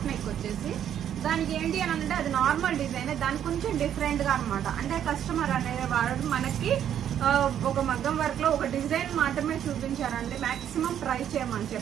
నెక్ వచ్చేసి. దానికి ఏంటి అని అంటే అది నార్మల్ డిజైన్, దానికి కొంచెం డిఫరెంట్గా అనమాట. అంటే కస్టమర్ అనేది వాడు మనకి ఒక మగ్గం వర్క్లో ఒక డిజైన్ మాత్రమే చూపించారండి, మ్యాక్సిమం ట్రై చేయమని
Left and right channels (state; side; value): quieter; left; 9.9 dB